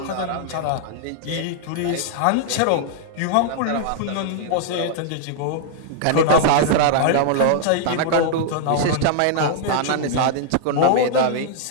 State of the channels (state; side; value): different; both; correlation -0.01